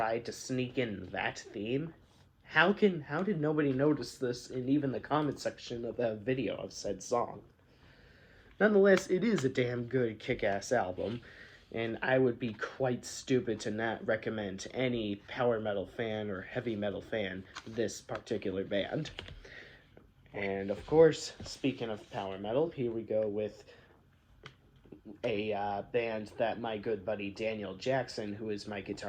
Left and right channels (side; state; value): both; identical; correlation 1.00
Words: to sneak in that theme? How did nobody notice this in even the comment section of the video of said song? Nonetheless, it is a damn good kick-ass album, and I would be quite stupid to not recommend any power metal fan or heavy metal fan this particular band. And of course, speaking of power metal, here we go with a band that my good buddy Daniel Jackson, who is my